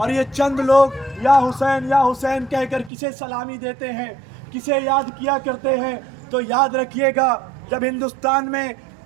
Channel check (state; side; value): drops out; left; at 2.9 s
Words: ये चंद लोग या हुसैन कहकर किसे सलामी देते हैं, किसे याद किया करते हैं। तो याद रखिएगा, जब हिंदुस्तान में